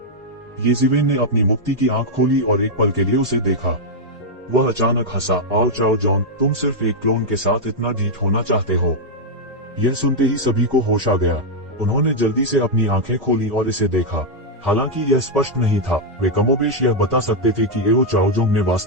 येशिवेन ने अपनी मुक्ति की आंख खोली और एक पल के लिए उसे देखा। वह अचानक हंसा, आओ चाओजोंग, तुम सिर्फ एक क्लोन के साथ इतना ढीठ होना चाहते हो। यह सुनते ही सभी को होश आ गया। उन्होंने जल्दी से अपनी आंखें खोली और इसे देखा। हालांकि यह स्पष्ट नहीं था, वे कमोबेश यह बता सकते थे कि एओ चाओजोंग ने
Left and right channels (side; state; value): both; normal; correlation -0.02